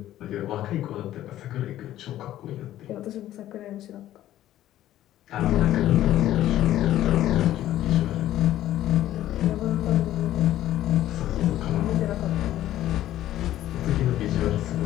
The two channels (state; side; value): quieter; right; 13.3 dB